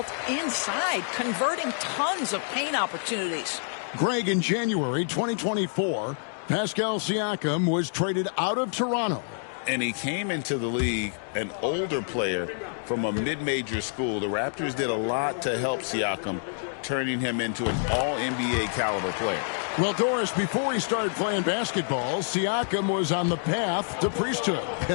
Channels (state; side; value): silent; right; digital silence